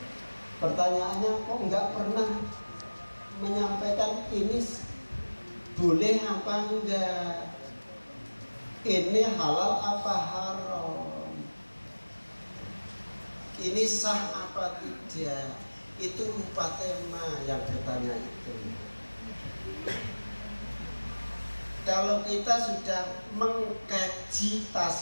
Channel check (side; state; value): both; inverted; correlation -1.00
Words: Pertanyaannya kok nggak pernah menyampaikan ini boleh apa enggak? Ini halal apa haram? Ini sah apa tidak? Itu lupa tema yang bertanya itu. Kalau kita sudah mengkaji